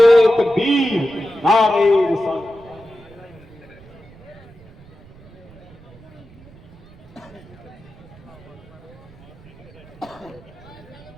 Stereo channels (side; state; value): right; noise; rumble, 22 dB below the sound